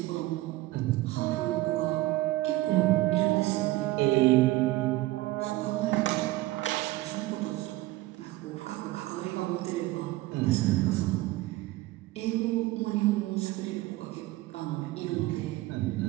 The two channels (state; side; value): quieter; left; 18.2 dB